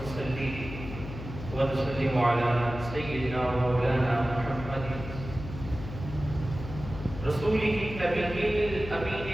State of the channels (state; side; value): noise; left; hum, 10 dB below the sound